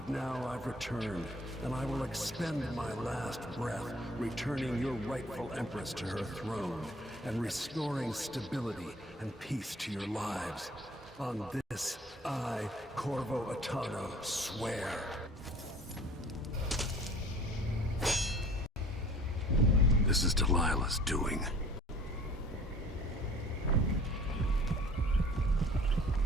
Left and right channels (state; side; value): normal; both; correlation 0.50